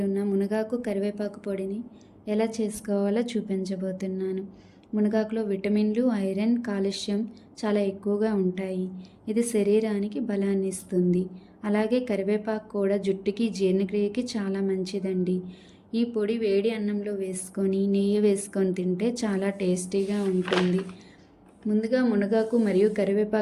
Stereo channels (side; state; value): both; identical; correlation 1.00